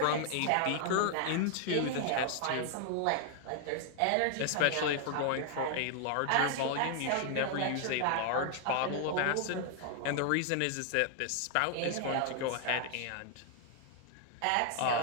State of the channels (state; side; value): different; both; correlation 0.00